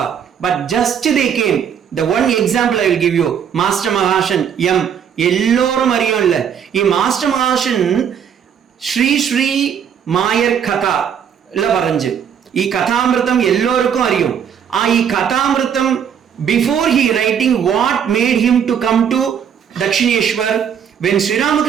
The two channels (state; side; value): quieter; left; 8.1 dB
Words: but just they came. The one example I will give you, Master Mahashan M. எல்லோரும் அறியும் இல்ல, Master Mahashan Sri Mayar Katha இல்ல வரைஞ்சு. ಈ ಕಥಾಮೃತಂ ಎಲ್ಲರಿಗೂ அறியும். ಈ ಕಥಾಮೃತಂ before he writing what made him to come to Dakshineshwar, when Sri